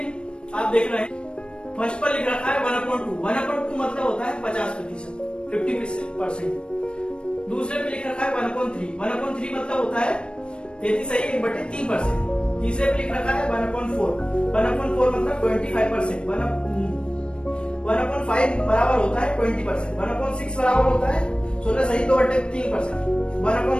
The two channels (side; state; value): right; late; 0.056 ms